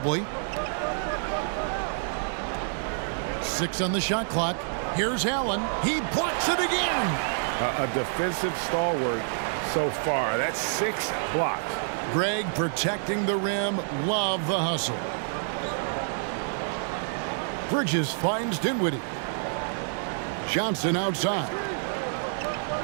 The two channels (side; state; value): left; silent; digital silence